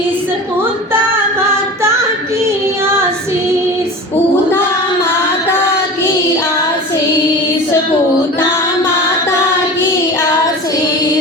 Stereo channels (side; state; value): both; normal; correlation 0.33